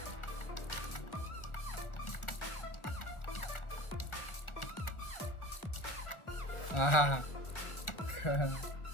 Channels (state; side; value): late; right; 1.4 ms